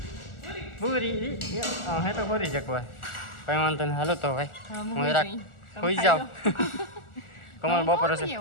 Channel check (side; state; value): right; late; 1.4 ms